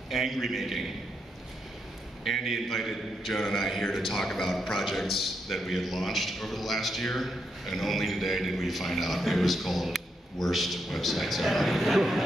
angry making. Andy invited Jonah and I here to talk about projects that we had launched over the last year, and only today did we find out it was called Worst Websites Ever.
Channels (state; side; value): normal; both; correlation 0.81